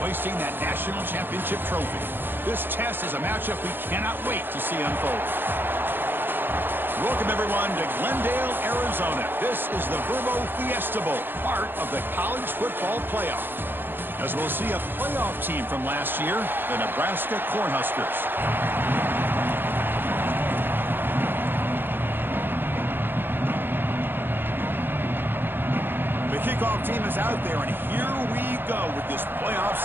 hoisting that national championship trophy. This test is a matchup we cannot wait to see unfold. Welcome, everyone, to Glendale, Arizona. This is the Verbo Fiesta Bowl, part of the college football playoff. As we'll see a playoff team from last year, the Nebraska Cornhuskers. The kickoff team is out there, and here we go with this playoff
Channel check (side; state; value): left; late; 0.098 ms